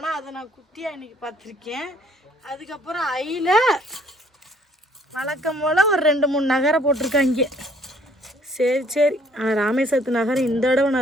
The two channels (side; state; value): both; normal; correlation 0.61